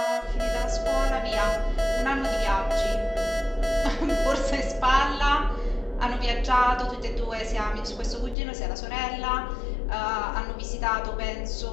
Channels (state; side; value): drops out; right; at 8.3 s